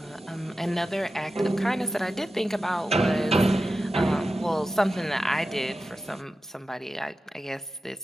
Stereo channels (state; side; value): normal; both; correlation 0.92